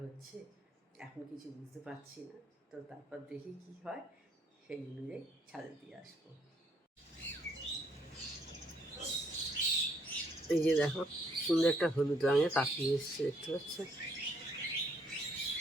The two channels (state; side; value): normal; both; correlation 0.69